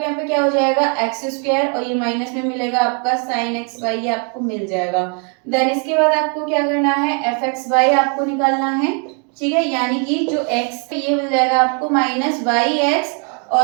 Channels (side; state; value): left; quieter; 38.8 dB